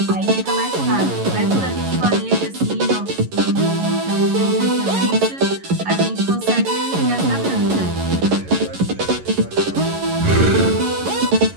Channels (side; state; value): left; late; 11 ms